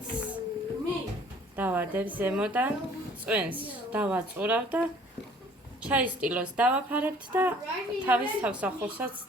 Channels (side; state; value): both; normal; correlation 0.54